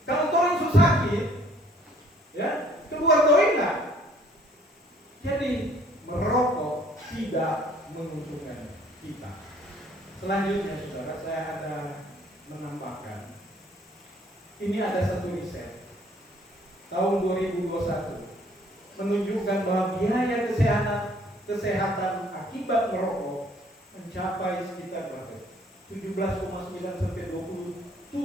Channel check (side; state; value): both; normal; correlation 0.59